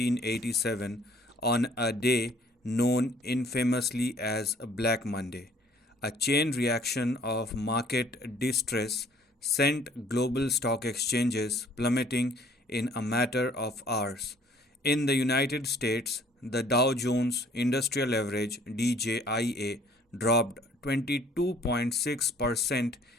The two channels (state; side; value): normal; both; correlation 0.57